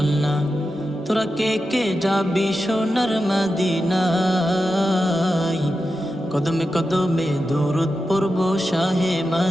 তোরা কে যাবি সোনার মদিনায়। কদমে কদমে দরুদ পড়ব শাহে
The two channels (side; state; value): both; normal; correlation 0.90